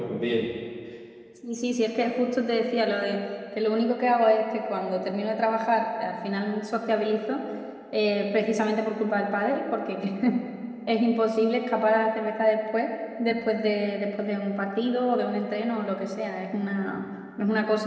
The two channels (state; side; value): identical; both; correlation 1.00